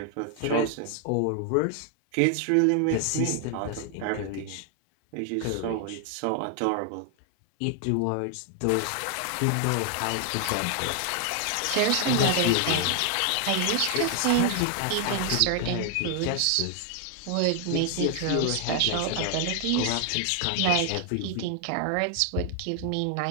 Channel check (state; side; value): different; both; correlation 0.00